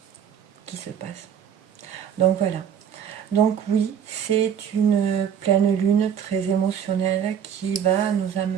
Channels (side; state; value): left; quieter; 8.5 dB